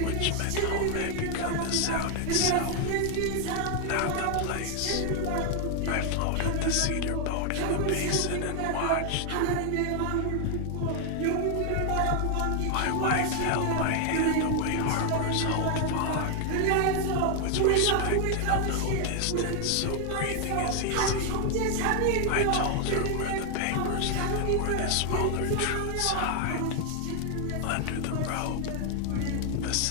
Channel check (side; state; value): both; different; correlation 0.00